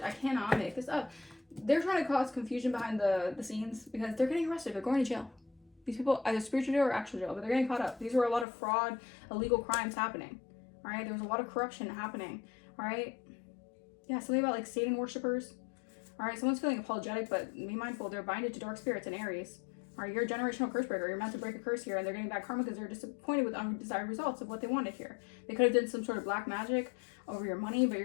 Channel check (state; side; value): drops out; right; at 8.5 s